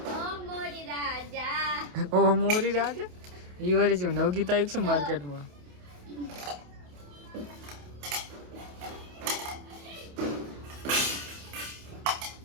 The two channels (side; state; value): left; late; 28 ms